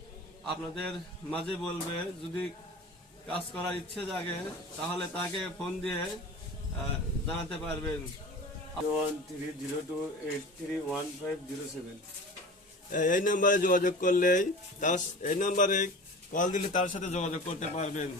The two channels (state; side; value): normal; both; correlation 0.36